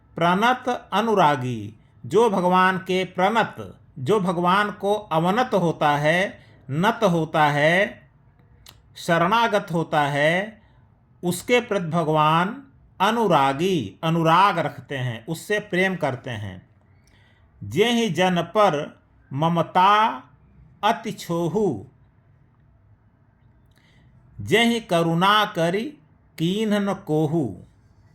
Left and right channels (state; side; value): identical; both; correlation 1.00